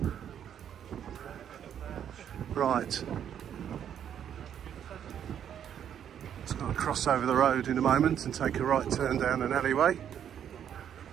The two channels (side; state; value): left; quieter; 9.2 dB